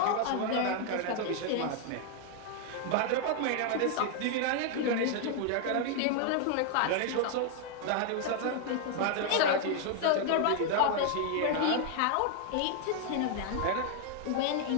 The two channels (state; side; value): different; both; correlation 0.00